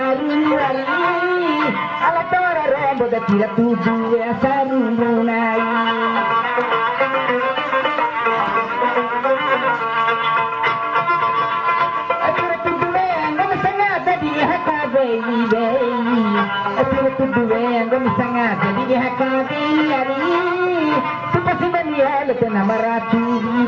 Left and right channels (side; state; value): both; identical; correlation 1.00